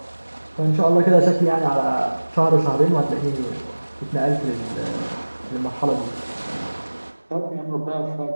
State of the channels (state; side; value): inverted; both; correlation -1.00